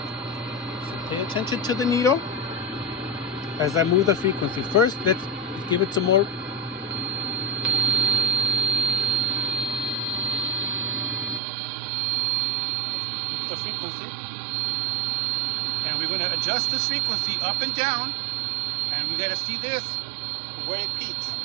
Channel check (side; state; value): left; drops out; at 11.4 s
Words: So pay attention to the needle as I move the frequency. First, let's give it some more. Let's move the frequency. And we're going to adjust this frequency up and down. And we got to see this, where it peaks.